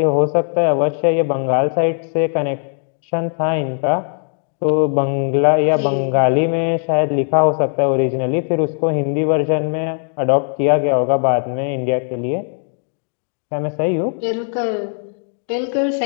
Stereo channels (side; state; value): right; silent; 59 dB below the other